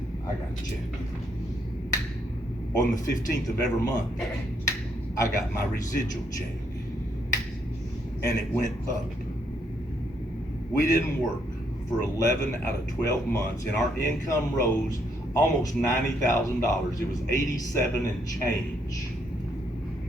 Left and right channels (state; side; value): normal; both; correlation 0.73